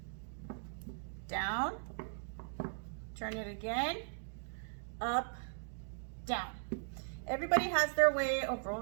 down, turn it again, up, down. Everybody has their way of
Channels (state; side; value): silent; left; digital silence